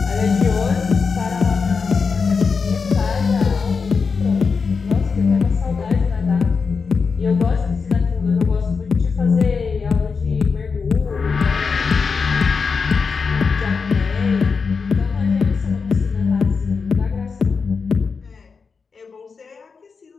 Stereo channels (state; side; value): quieter; right; 5.2 dB